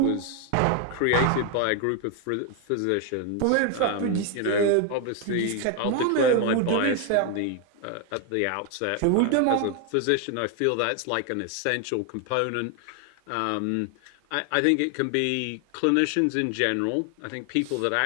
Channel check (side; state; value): both; different; correlation 0.01